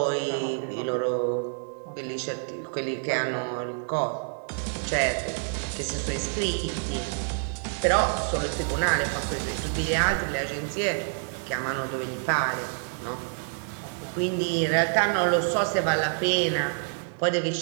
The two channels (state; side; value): silent; left; 59 dB below the other